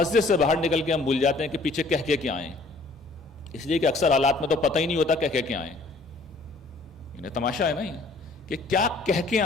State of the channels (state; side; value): quieter; right; 3.2 dB